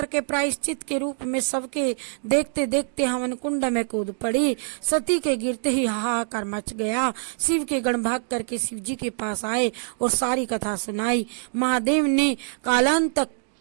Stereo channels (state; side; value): silent; left; digital silence